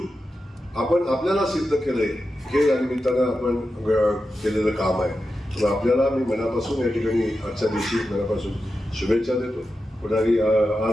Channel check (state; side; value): normal; both; correlation 0.90